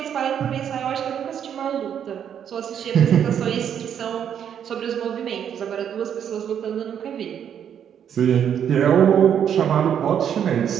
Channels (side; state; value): left; quieter; 8.8 dB